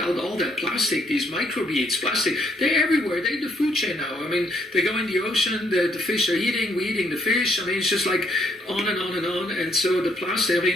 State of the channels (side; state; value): both; normal; correlation 0.71